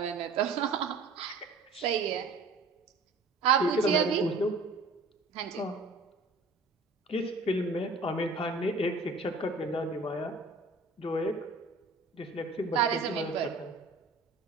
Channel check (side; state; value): left; quieter; 3.4 dB